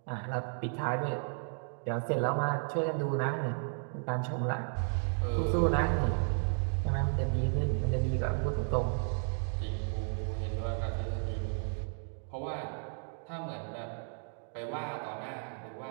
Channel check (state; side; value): silent; left; 55 dB below the other